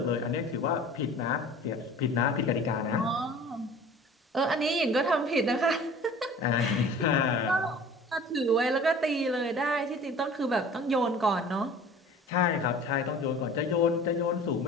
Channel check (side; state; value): both; normal; correlation 0.44